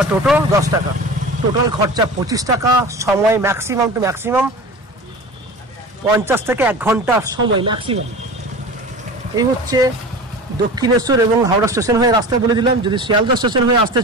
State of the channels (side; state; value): both; normal; correlation 0.34